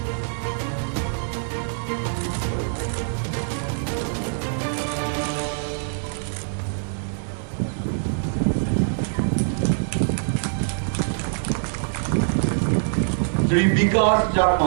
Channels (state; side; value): silent; left; digital silence